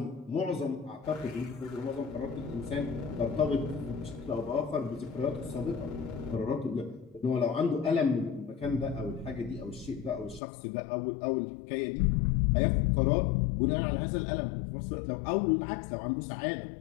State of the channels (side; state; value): right; drops out; at 10.4 s